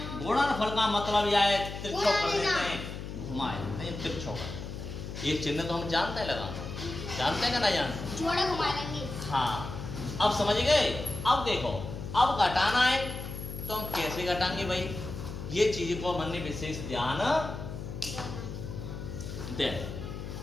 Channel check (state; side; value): noise; left; hum, 8 dB below the sound